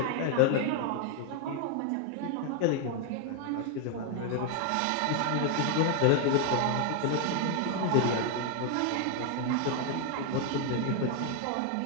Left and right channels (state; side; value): different; both; correlation 0.00